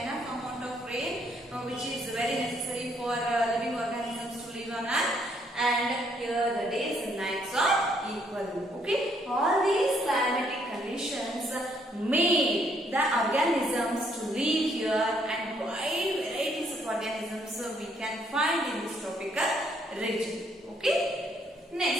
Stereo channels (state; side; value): normal; both; correlation 0.69